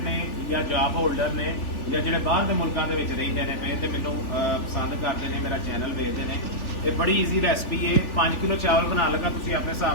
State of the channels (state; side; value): late; right; 3.4 ms